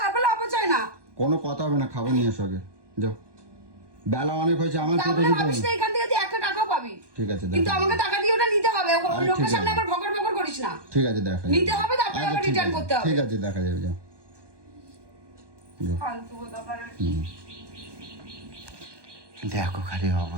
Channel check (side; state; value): left; late; 1.2 ms